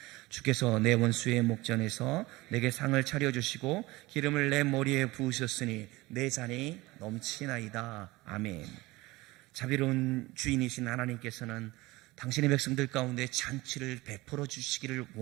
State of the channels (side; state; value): left; quieter; 20.7 dB